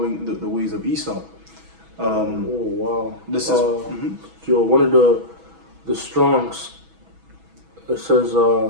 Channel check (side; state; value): left; late; 6.1 ms